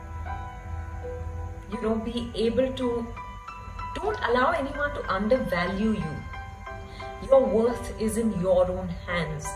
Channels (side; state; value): both; identical; correlation 1.00